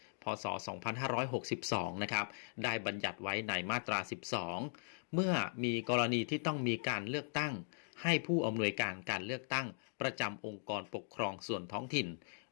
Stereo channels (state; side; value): silent; right; digital silence